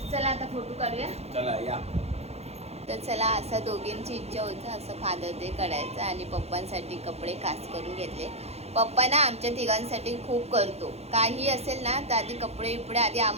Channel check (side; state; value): left; late; 0.31 ms